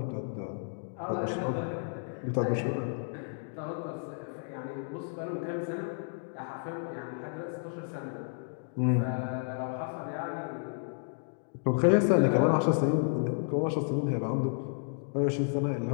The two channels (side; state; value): right; silent; digital silence